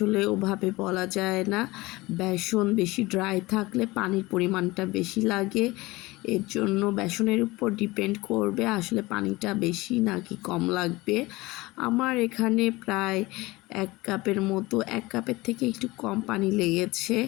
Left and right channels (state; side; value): quieter; right; 21.0 dB